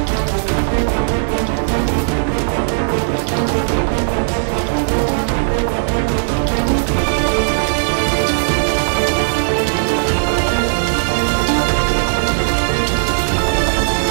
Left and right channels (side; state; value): left; silent; digital silence